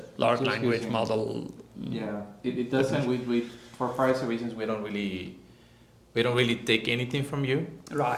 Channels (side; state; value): both; identical; correlation 1.00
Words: large language model. Yeah, it doesn't. We for privacy reasons we don't really take anything from you.